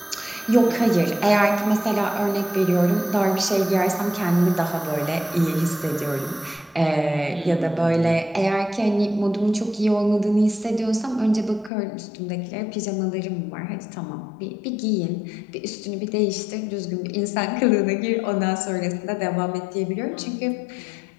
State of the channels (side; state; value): right; drops out; at 11.7 s